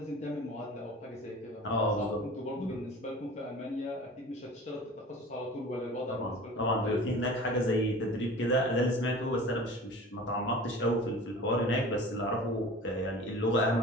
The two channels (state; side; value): normal; both; correlation 0.40